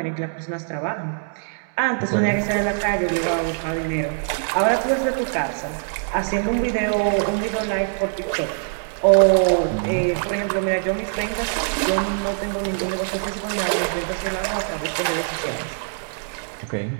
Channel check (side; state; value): left; silent; digital silence